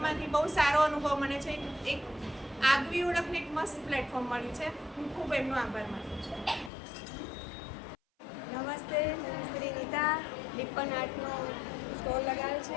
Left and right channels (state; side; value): drops out; right; at 6.7 s